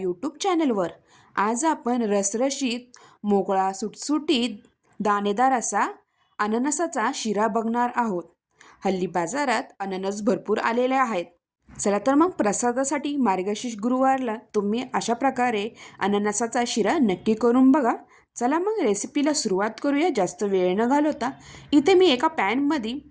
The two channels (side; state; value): both; identical; correlation 1.00